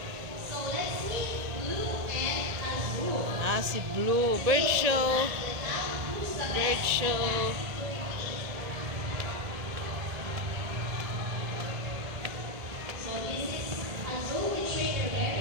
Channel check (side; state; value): left; late; 1.8 ms